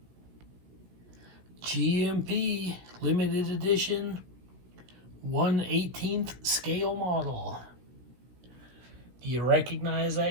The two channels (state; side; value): late; left; 16 ms